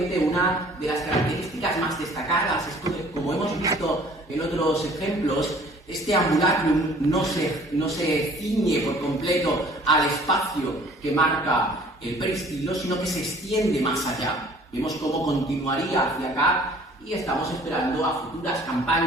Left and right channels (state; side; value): normal; both; correlation 0.53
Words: una de las características más destacadas es que, como hemos visto en otros ejemplos, este ambulacrum no se ciñe por completo al espacio que marca el peristilo, sino que se extiende más allá. Vemos cómo continuaría hacia acá y estamos esperando a futuras